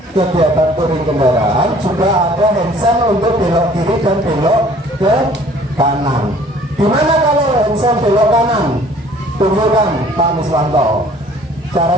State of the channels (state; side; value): normal; both; correlation 0.54